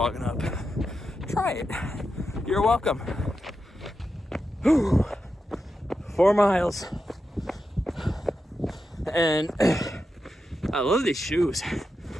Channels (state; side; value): normal; both; correlation 0.88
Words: up. Try it. You're welcome. 4 miles. And I love these shoes.